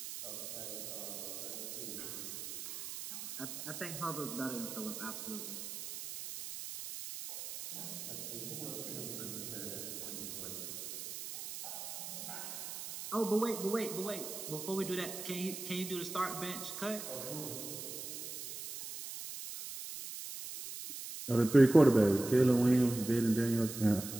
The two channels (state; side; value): noise; right; hiss, 8 dB below the sound